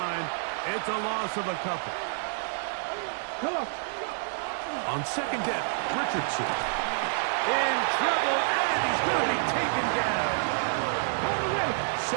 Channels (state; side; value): silent; left; digital silence